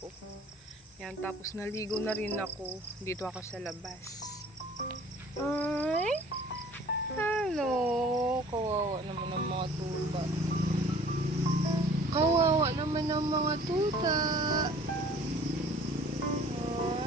Ayan, tapos naligo na rin ako. Dito ako sa labas. Ay! Hello! Kawawa naman ng mga tuta. Kawawa naman ng mga tuta.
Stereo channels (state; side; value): normal; both; correlation 0.50